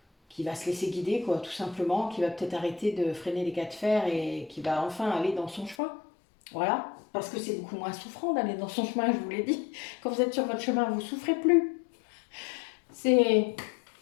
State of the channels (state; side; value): drops out; right; at 5.8 s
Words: va se laisser guider, quoi, tout simplement, qui va peut-être arrêter de freiner les cas de fer et qui va enfin aller dans son chemin. Voilà, parce que c'est beaucoup moins souffrant d'aller dans son chemin, je vous l'ai dit. Quand vous êtes sur votre chemin, vous ne souffrez plus. C'est